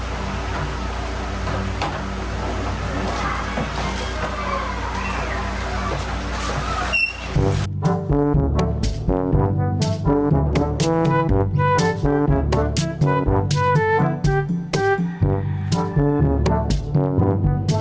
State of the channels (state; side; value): identical; both; correlation 1.00